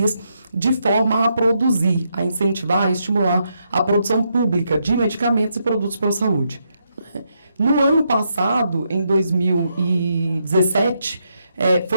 de forma a produzir, a incentivar, a estimular a produção pública de medicamentos e produtos para a saúde. No ano passado, em 2017,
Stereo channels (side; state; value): both; inverted; correlation -0.79